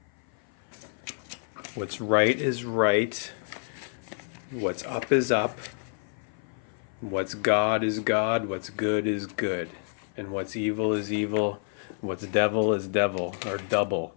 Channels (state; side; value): silent; right; 55 dB below the other